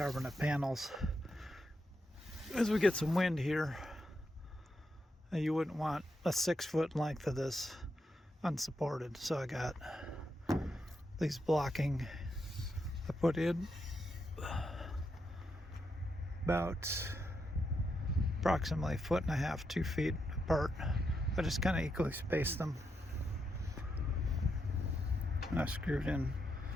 panels. As we get some wind here, you wouldn't want a 6-foot length of this unsupported. So I got these blocking I put in about approximately 1.5 feet, 2 feet apart. I just kind of equally spaced them. And I screwed in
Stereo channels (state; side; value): normal; both; correlation 0.83